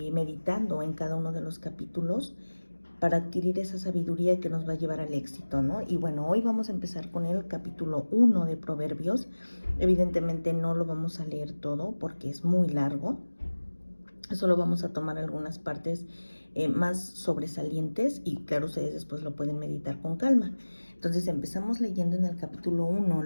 meditando en cada uno de los capítulos para adquirir esa sabiduría que nos va a llevar al éxito, ¿no? Y bueno, hoy vamos a empezar con el capítulo 1 de Proverbios. Evidentemente no lo vamos a leer todo porque es muy largo. Solo vamos a tomar algunas partes más sobresalientes y claro, ustedes después lo pueden meditar con calma. Entonces empezamos leyendo en el capítulo 1,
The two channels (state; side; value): inverted; both; correlation -1.00